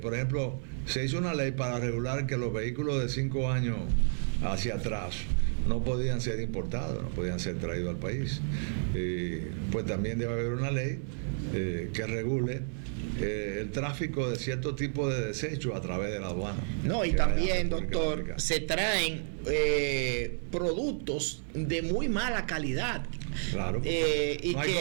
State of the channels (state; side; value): silent; left; digital silence